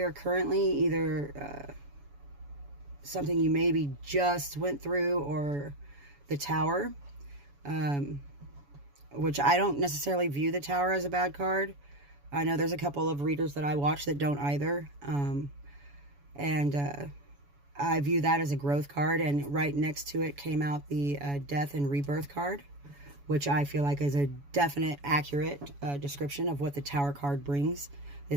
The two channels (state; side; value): late; left; 7.1 ms